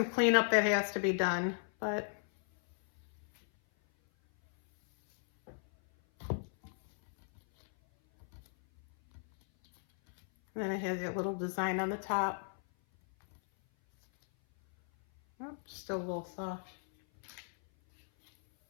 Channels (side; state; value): right; silent; 54 dB below the other